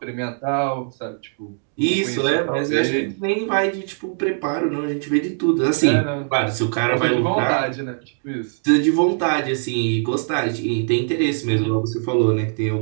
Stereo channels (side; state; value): left; silent; digital silence